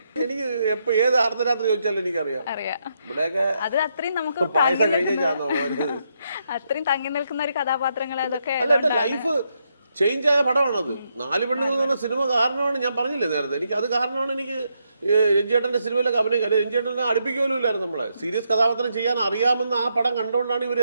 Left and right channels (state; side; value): inverted; both; correlation -0.79